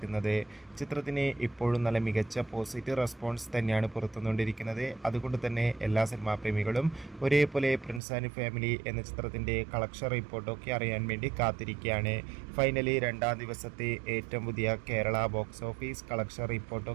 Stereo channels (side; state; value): left; drops out; at 8.0 s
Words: ചിത്രത്തിന് ഇപ്പോഴും നല്ല മികച്ച പോസിറ്റീവ് റെസ്പോൺസ് തന്നെയാണ് പുറത്തുകൊണ്ടിരിക്കുന്നത്. അതുകൊണ്ട് തന്നെ എല്ലാ സിനിമാ പ്രേമികളും ഒരേപോലെ പ്രിൻസ് ആൻഡ് ഫാമിലി എന്ന ചിത്രത്തിൻ്റെ കളക്ഷൻ റിപ്പോർട്ടൊക്കെ അറിയാൻ വേണ്ടി കാത്തിരിക്കുകയാണ്. ഫൈനലി രണ്ടാം ദിവസത്തെ ഏറ്റവും പുതിയ കേരള ബോക്സ് ഓഫീസ് കളക്ഷൻ